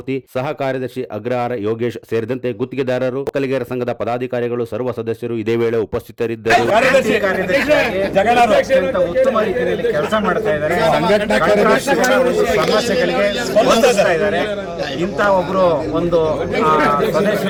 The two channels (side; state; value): both; identical; correlation 1.00